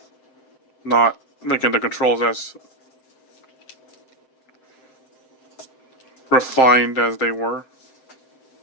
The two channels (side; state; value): right; late; 7.7 ms